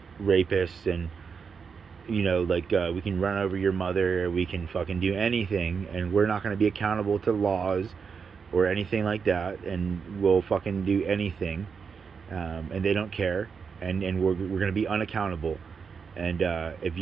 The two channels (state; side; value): quieter; left; 5.9 dB